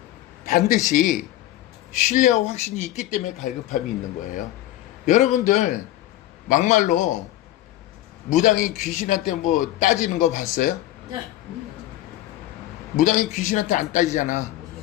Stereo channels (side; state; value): right; quieter; 14.5 dB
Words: 반드시 신뢰와 확신이 있기 때문에 갈급함이 있는 거예요. 여러분들 막말로 무당이 귀신한테 뭐 따지는 거 봤어요? 무당이 귀신한테 안 따지잖아.